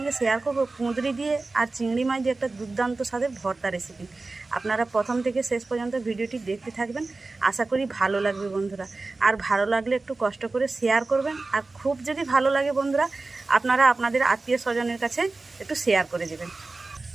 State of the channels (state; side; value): quieter; left; 3.5 dB